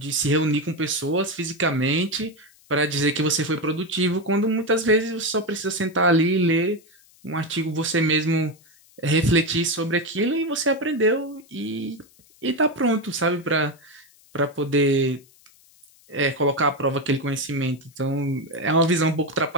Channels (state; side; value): noise; left; hiss, 29 dB below the sound